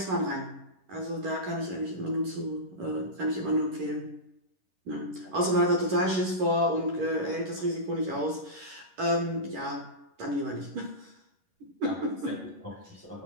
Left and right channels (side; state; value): left; late; 11 ms